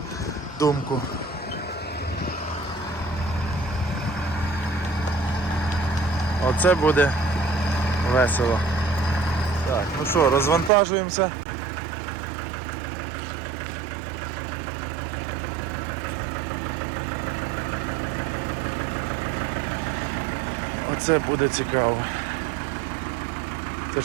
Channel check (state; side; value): drops out; left; at 10.7 s